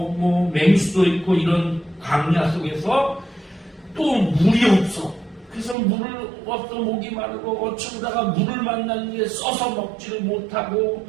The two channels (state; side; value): drops out; left; at 5.8 s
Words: 맹수도 있고 이런 광야 속에서 또 물이 없어. 그래서 물을 없어 목이 마르고 어쩌다가 물을 만났는데 써서 먹지를 못하고